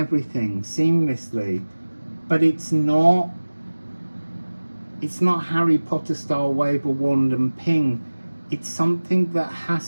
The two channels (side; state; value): both; inverted; correlation -1.00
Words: seamlessly. But it's not Harry Potter style wave a wand and ping. It's something that